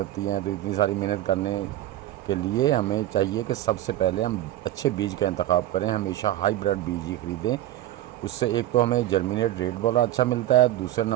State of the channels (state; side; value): quieter; left; 14.0 dB